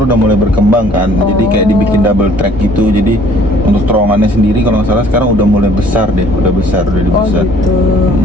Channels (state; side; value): normal; both; correlation 0.57